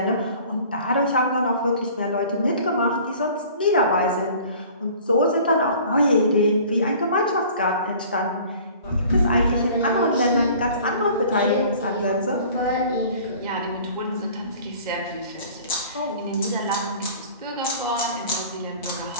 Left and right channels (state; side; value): inverted; both; correlation -0.48